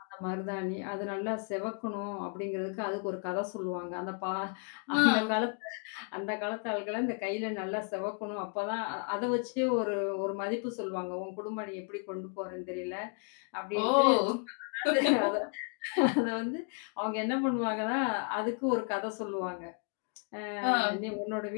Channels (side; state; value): right; quieter; 37.3 dB